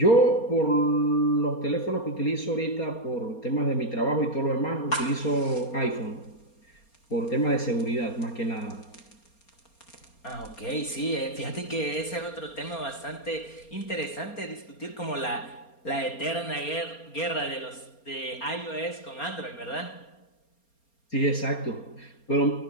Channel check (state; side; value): late; right; 4.3 ms